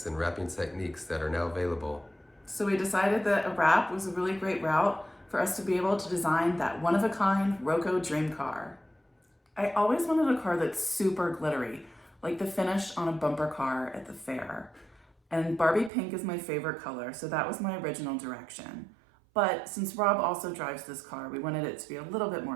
and wrapping techniques that are now available. So we decided that a wrap was a really great route for us to be able to design that one-of-a-kind Roco dream car. I always wanted a car that's super glittery, like the finish on a bumper car at the fair. And Barbie pink is my favorite color, so that was my original direction. But since Rob also drives this car, we wanted it to be a little bit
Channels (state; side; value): drops out; left; at 15.9 s